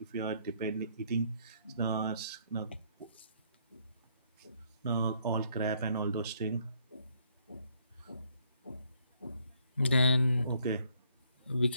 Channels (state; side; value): inverted; both; correlation -0.68